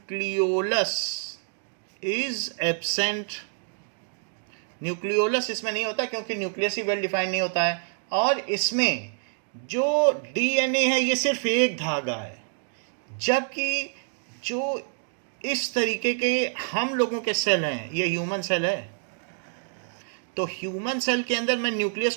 इज एब्सेंट. न्यूक्लियोलस इसमें नहीं होता क्योंकि न्यूक्लियस ही वेल डिफाइंड नहीं होता है. और इसमें जो डीएनए है ये सिर्फ एक धागा है, जबकि जो इस तरीके के हम लोगों के सेल हैं, ये ह्यूमन सेल है. तो ह्यूमन सेल के अंदर मैं न्यूक्लियस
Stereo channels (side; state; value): left; silent; 60 dB below the other